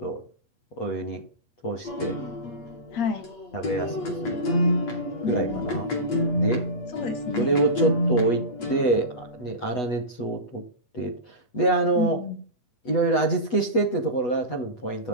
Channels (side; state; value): right; late; 8.1 ms